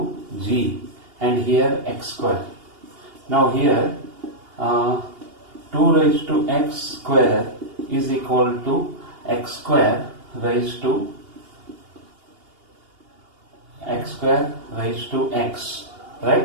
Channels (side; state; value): left; late; 2.8 ms